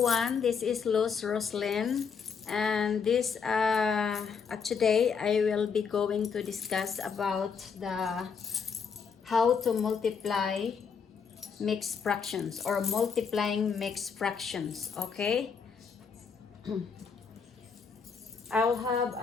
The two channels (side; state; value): right; quieter; 6.1 dB